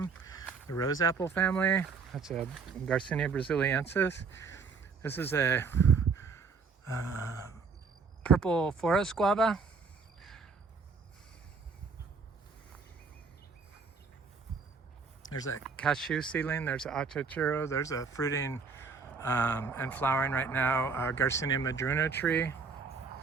the rose apple family. That's a Garcinia brasiliensis. This is a purple forest guava. There's a cashew seedling. There's an Achachairu. There's a fruiting and flowering right now. Garcinia madruna tree.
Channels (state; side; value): quieter; left; 5.0 dB